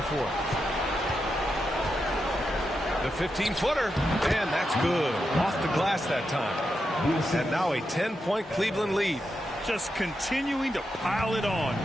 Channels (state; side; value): normal; both; correlation 0.86